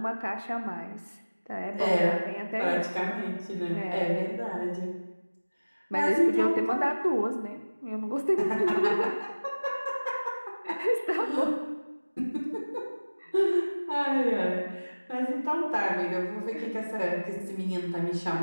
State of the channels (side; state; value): both; inverted; correlation -1.00